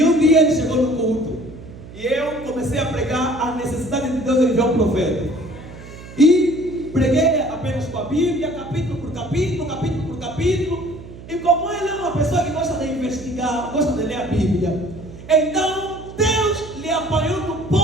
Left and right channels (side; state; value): right; noise; hum, 16 dB below the sound